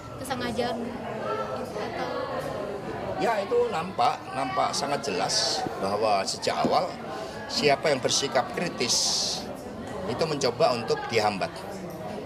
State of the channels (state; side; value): identical; both; correlation 1.00